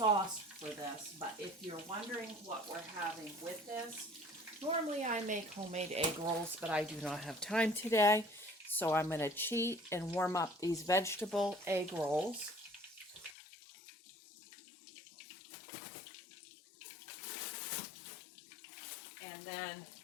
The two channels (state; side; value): drops out; right; at 13.4 s